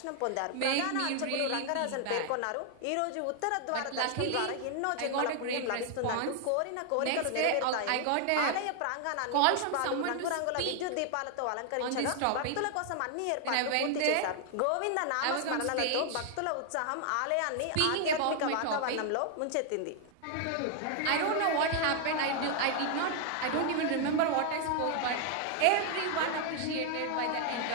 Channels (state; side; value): different; both; correlation 0.00